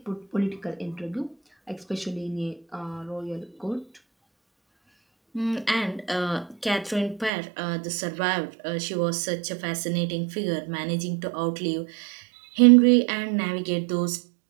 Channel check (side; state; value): left; drops out; at 7.3 s